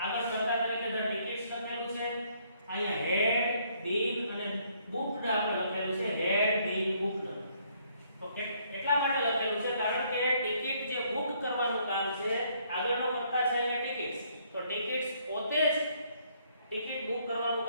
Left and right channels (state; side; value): inverted; both; correlation -0.67